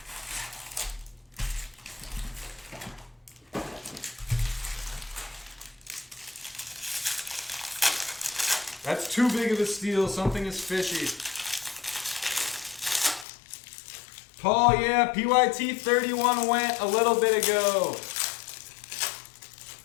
That's too big of a steal. Something is fishy. Paul, yeah, PYT 31 went a little bit ago.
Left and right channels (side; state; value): right; drops out; at 13.2 s